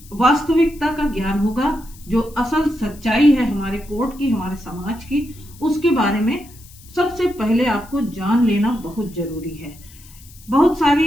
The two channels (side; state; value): left; noise; hiss, 23 dB below the sound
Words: वास्तविकता का ज्ञान होगा। जो असल सच्चाई है हमारे कोर्ट की, हमारे समाज की, उसके बारे में सबसे पहले आपको जान लेना बहुत जरूरी है। बहुत